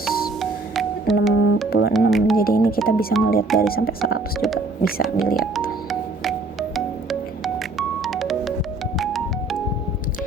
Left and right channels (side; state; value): left; quieter; 3.2 dB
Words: Jadi ini kita bisa melihat dari sampai 100 juga bisa dilihat.